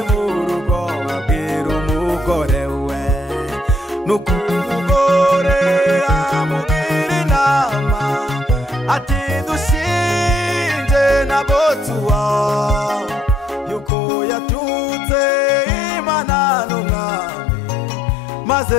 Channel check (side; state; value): right; drops out; at 13.9 s